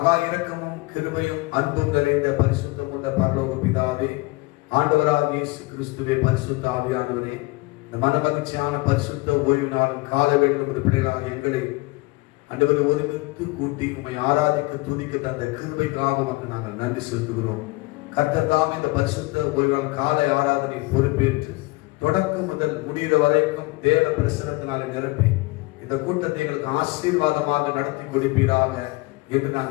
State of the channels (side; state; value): right; quieter; 23.2 dB